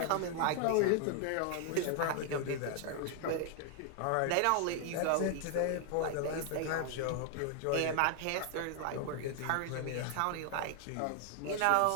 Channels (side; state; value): both; different; correlation 0.00